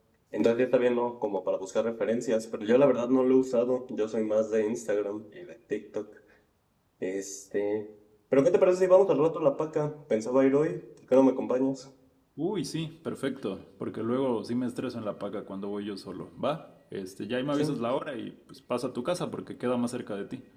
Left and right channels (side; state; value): both; identical; correlation 1.00